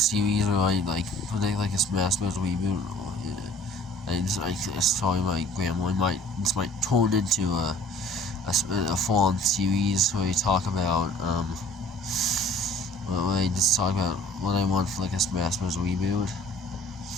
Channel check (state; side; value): normal; both; correlation 0.51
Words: where I like a Smash Bros. Reboot. I told my grandma this might turn into a full-on series where we talk about where I just talk about what I want for like a Smash Bros. Reboot.